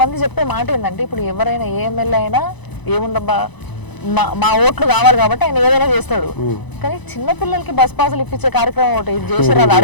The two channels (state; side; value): late; right; 1.0 ms